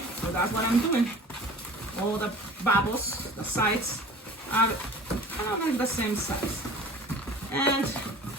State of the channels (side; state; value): both; normal; correlation 0.43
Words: so that's what I'm doing. All the bubbles, the sides are kind of like the same size. And